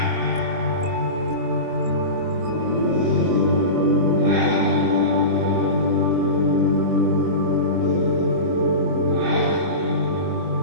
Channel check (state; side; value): late; left; 24 ms